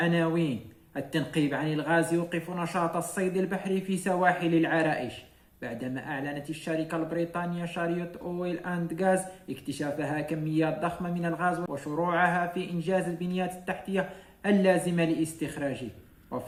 التنقيب عن الغاز يوقف نشاط الصيد البحري في سواحل العرائش بعدما أعلنت الشركة البريطانية شاريوت أويل أند غاز اكتشافها كميات ضخمة من الغاز وشروعها في إنجاز البنيات التحتية اللازمة لاستخراجه.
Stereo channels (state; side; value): identical; both; correlation 1.00